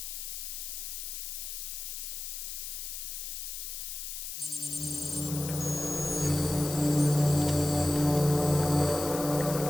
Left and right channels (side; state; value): left; noise; hiss, 6 dB below the sound